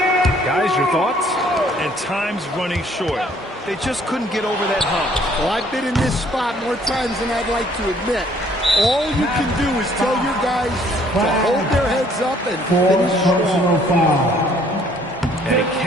Guys, your thoughts? And time's running short. They just couldn't get over that hump. Well, I've been in this spot more times than I'd like to admit. All you can do is tell your guys to hold their heads up and finish strong. And he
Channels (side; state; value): both; normal; correlation 0.61